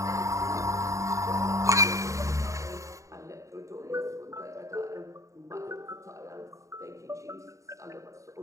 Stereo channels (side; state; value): left; late; 0.15 ms